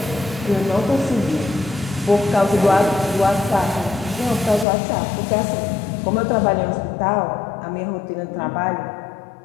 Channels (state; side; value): drops out; right; at 4.7 s